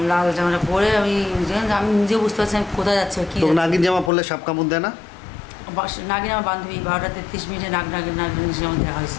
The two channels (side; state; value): right; drops out; at 4.1 s